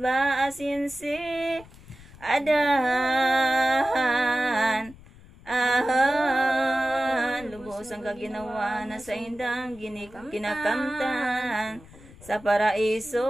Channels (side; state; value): left; noise; rumble, 21 dB below the sound